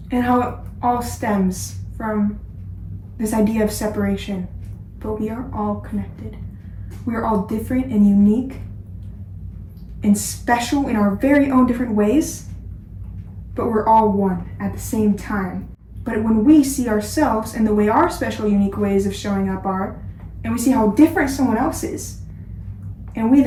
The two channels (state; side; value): identical; both; correlation 1.00